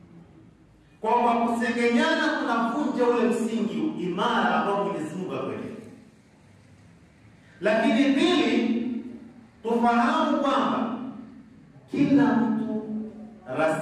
Kwa kusengenyana kunavunja ule msingi imara ambao Mwenyezi Mungu akweleza. Lakini pili, tufahamu kwamba kila mtu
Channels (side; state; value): both; identical; correlation 1.00